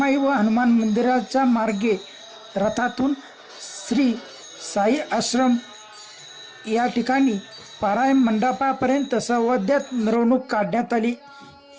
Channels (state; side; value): identical; both; correlation 1.00